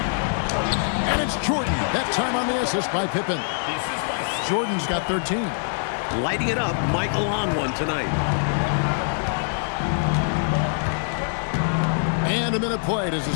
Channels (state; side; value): silent; right; digital silence